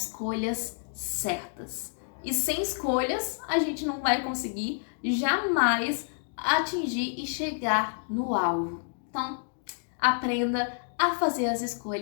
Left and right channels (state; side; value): silent; right; 59 dB below the other